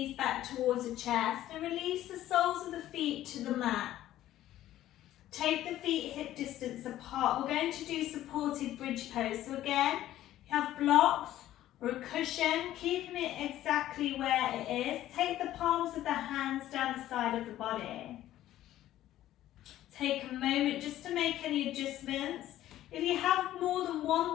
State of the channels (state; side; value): quieter; right; 13.5 dB